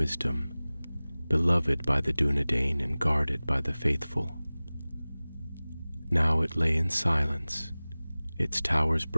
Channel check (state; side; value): inverted; both; correlation -0.99